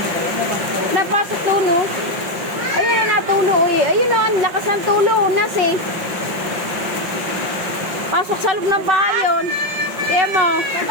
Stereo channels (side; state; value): left; late; 5.6 ms